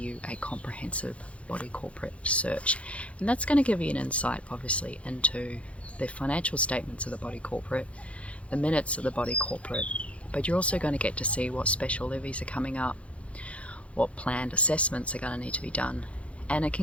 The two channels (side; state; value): right; late; 0.063 ms